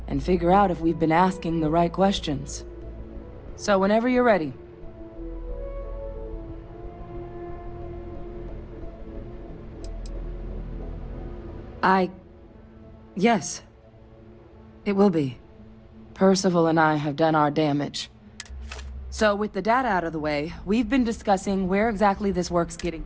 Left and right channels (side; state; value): both; identical; correlation 1.00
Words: and figure out if we've been asking the right questions. So whenever you're ready. Yes. It will be. Percival and I have done our damage. So with the data out of the way, we've been discussing where exactly this work's getting.